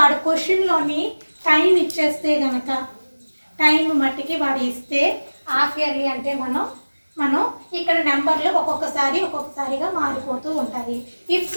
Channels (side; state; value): both; inverted; correlation -1.00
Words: క్వశ్చన్లోని టైం ఇచ్చేస్తే కనుక టైం మట్టికి వాడు ఇస్తే హాఫ్ ఇయర్లీ అంటే మనం ఇక్కడ నెంబర్లు ఒక్కొక్కసారిగా మారిపోతూ ఉంటాయి. If